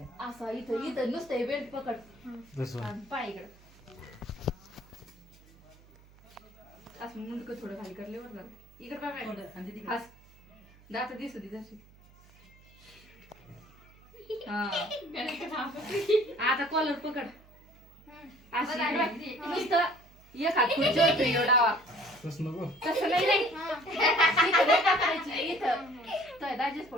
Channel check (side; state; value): right; noise; hum, 26 dB below the sound